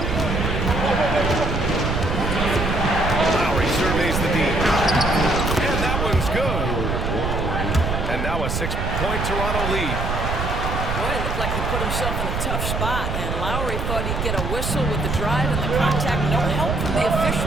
Lowry surveys the deep. And that one's good. And now a 6-point Toronto lead. Boy, it looked like he put himself in a tough spot, and Lowry thought he'd get a whistle with the drive and the contact. No help from the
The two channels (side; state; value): right; noise; rumble, 2 dB below the sound